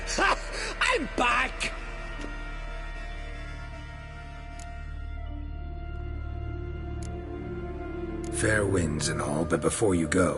I'm back! Fair winds and all, but before you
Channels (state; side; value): identical; both; correlation 1.00